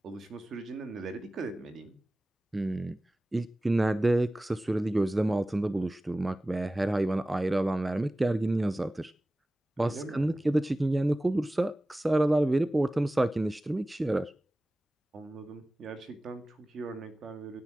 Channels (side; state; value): both; normal; correlation 0.97